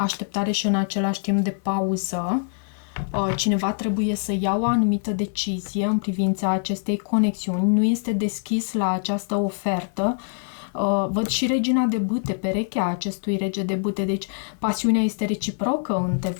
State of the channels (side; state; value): right; silent; 56 dB below the other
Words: și în același timp de pauză. Cineva trebuie să ia o anumită decizie în privința acestei conexiuni. Nu este deschis la această ofertă. Văd și regina de bâte, perechea acestui rege de bâte, deci pasiunea este reciprocă